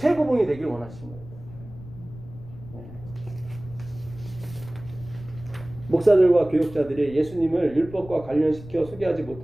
되길 원하시는 거예요. 목사들과 교역자들이 예수님을 율법과 관련시켜 소개하지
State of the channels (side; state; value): left; noise; rumble, 16 dB below the sound